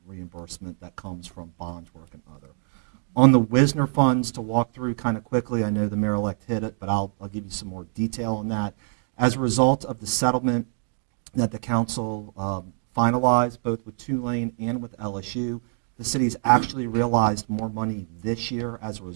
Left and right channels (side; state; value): left; silent; 61 dB below the other